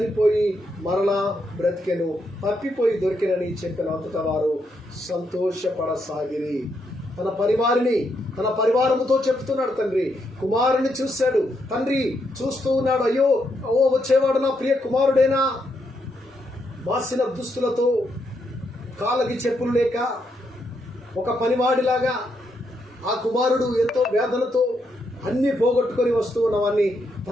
మరలా బ్రతికెను, తప్పిపోయి దొరికినని చెప్పిన అంతటా వారు సంతోషపడసాగిరి. తన పరివారముతో చెప్తున్నాడు తండ్రి. కుమారుని చూశాడు, తండ్రి చూస్తూ ఉన్నాడు. అయ్యో వచ్చేవాడు నా ప్రియ కుమారుడేనా? మాసిన దుస్తులతో, కాళ్ళకి చెప్పులు లేక ఒక పనివాడిలాగా ఆ కుమారుడు ఎంతో వేదనతో అన్ని పోగొట్టుకొని వస్తూ ఉన్నవాన్ని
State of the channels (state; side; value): normal; both; correlation 0.79